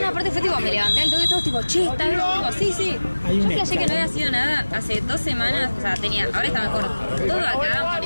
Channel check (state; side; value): inverted; both; correlation -1.00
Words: parte fue tipo, me levanté al toque y todos tipo, che, está bien, tipo, sí. Yo flashé que no había sido nada hace 2 semanas, o sea, tenía, ahora está mejor. Todo acá,